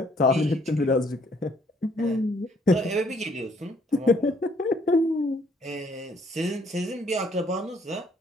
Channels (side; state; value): both; normal; correlation 0.65